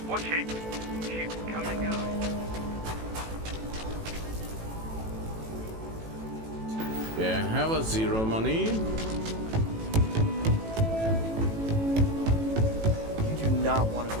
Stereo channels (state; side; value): late; left; 18 ms